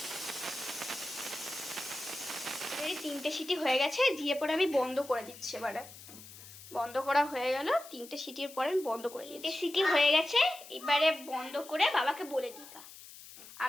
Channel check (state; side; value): noise; left; hiss, 17 dB below the sound